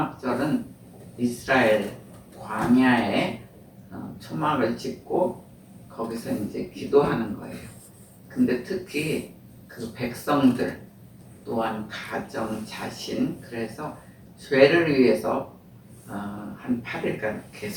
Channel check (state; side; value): identical; both; correlation 1.00